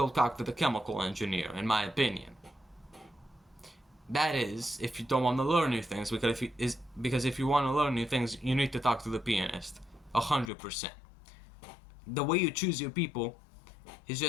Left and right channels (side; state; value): right; drops out; at 10.5 s